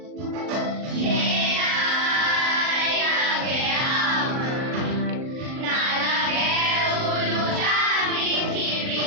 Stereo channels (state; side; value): late; left; 39 ms